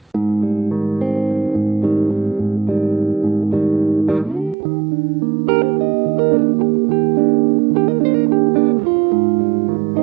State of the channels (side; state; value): left; drops out; at 4.5 s